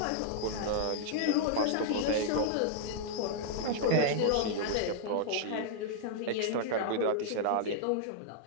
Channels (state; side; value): different; both; correlation -0.01